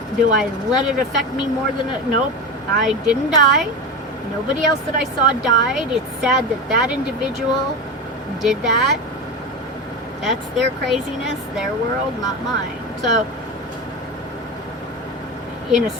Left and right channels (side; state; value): both; normal; correlation 0.22